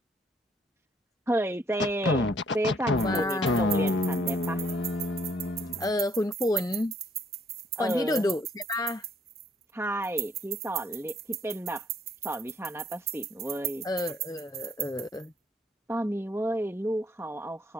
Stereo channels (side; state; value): both; normal; correlation 0.65